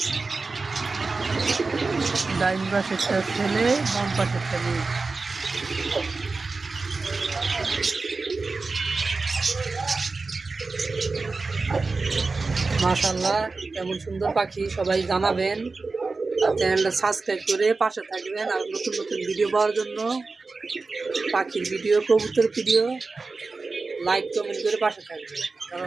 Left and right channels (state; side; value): quieter; left; 3.9 dB